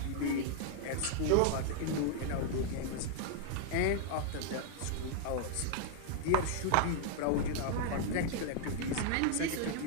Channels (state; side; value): different; both; correlation 0.00